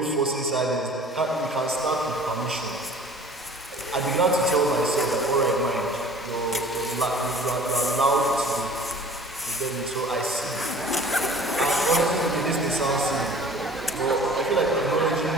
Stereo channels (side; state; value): both; normal; correlation 0.47